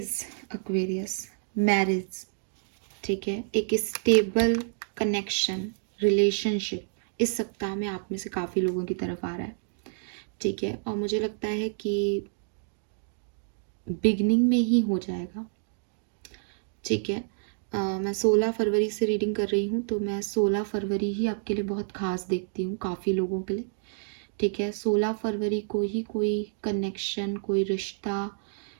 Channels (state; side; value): silent; left; digital silence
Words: Aquarius, marriage, ठीक है, एक स्टेबल कनेक्शन, रिलेशनशिप इस सप्ताह में आप में से काफ़ी लोगों की तरफ आ रहा है, ठीक है। और मुझे लगता है कि बिगनिंग में ही हो जाएगा, ठीक है। मैं 16 फरवरी से रीडिंग कर रही हूँ, तो मैं 16 फरवरी ही आपके लिए बहुत खास देखती हूँ काफ़ी लोगों के लिए, ठीक है। 16 फरवरी को ही कोई कनेक्शन, कोई रिश्ता,